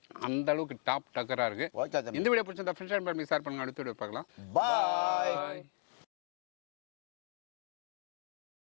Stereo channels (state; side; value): silent; right; 53 dB below the other